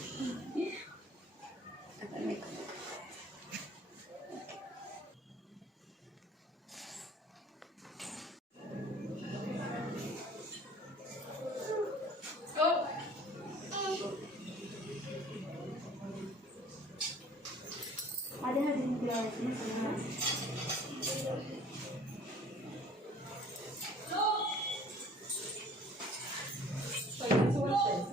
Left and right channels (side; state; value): both; normal; correlation 0.51